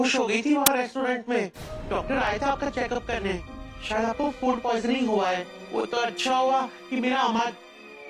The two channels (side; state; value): both; identical; correlation 1.00